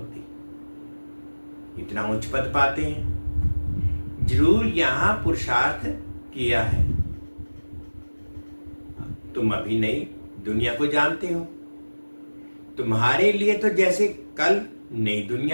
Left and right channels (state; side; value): inverted; both; correlation -1.00